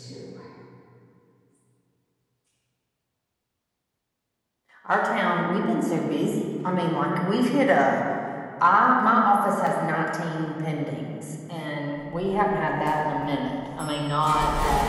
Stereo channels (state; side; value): identical; both; correlation 1.00